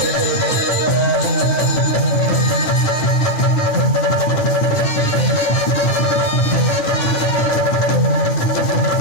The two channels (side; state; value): right; late; 9.5 ms